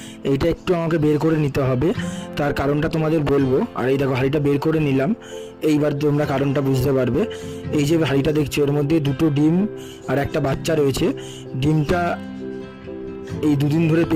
এইটা একটু আমাকে বের করে নিতে হবে, তার কারণটা তোমাদের বলবো। আর এই দেখো হাঁড়িটা বের করে নিলাম, এইবার তোমরা কারণটা বুঝতে পারবে। এই যে হাঁড়িটা দেখছো এর মধ্যে দুটো ডিম আর একটা বাচ্চা রয়েছে। ডিমটা এই দুদিন ধরে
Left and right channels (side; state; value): both; identical; correlation 1.00